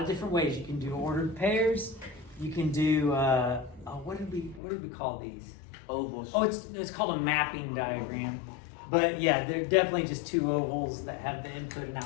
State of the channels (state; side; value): drops out; right; at 4.6 s